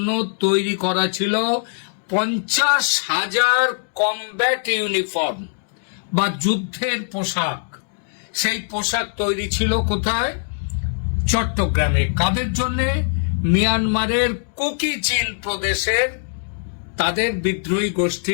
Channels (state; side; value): silent; right; digital silence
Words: তৈরি করা ছিল 50,000 কমব্যাট ইউনিফর্ম বা যুদ্ধের পোশাক। সেই পোশাক তৈরি ছিল কোথায়? চট্টগ্রামে। কাদের জন্য? মিয়ানমারের কুকি চিন প্রদেশের তাদের বিদ্রোহী